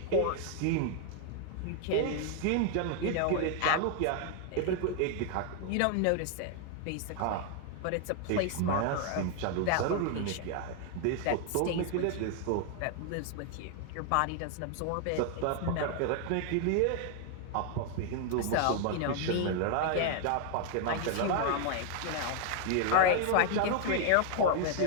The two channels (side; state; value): both; different; correlation 0.00